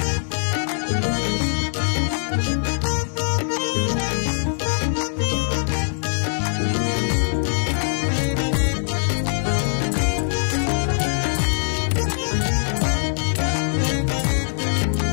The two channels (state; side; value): silent; right; digital silence